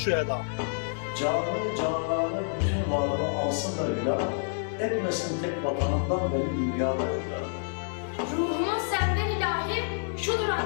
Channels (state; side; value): silent; right; 59 dB below the other